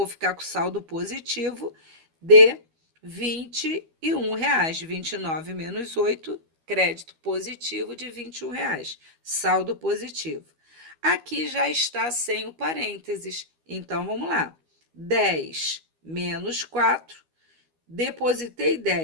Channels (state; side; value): late; left; 12 ms